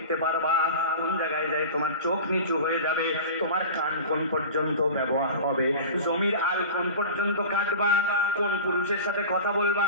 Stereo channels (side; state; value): both; inverted; correlation -0.34